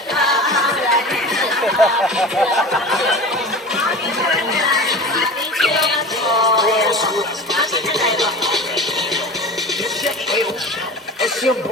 Esse é um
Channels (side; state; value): both; normal; correlation 0.34